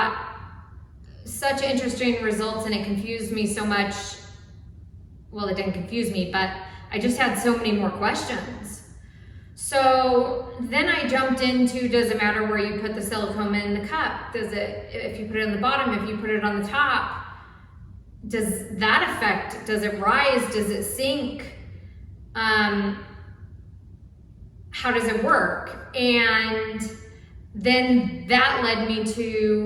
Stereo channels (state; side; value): identical; both; correlation 1.00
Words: such interesting results, and it confused me so much. Well, it didn't confuse me, but I just had so many more questions. So then I jumped into, does it matter where you put the silicone in the cup? Does it, if you put it on the bottom, if you put it on the top, does that affect, does it rise, does it sink? How does it work? And then that led me